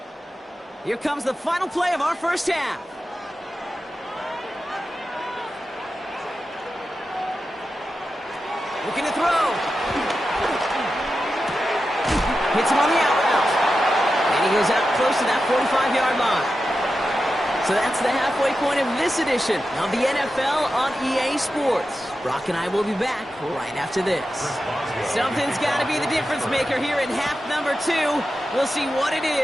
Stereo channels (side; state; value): both; normal; correlation 0.91